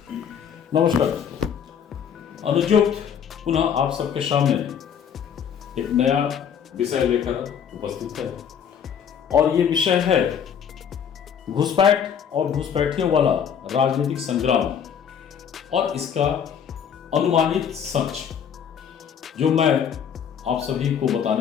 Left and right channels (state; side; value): quieter; right; 7.9 dB